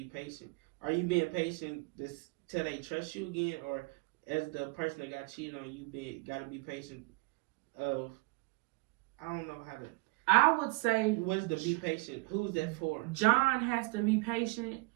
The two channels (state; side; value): quieter; left; 26.3 dB